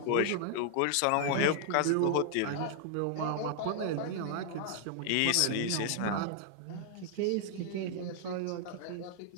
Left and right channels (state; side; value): different; both; correlation 0.00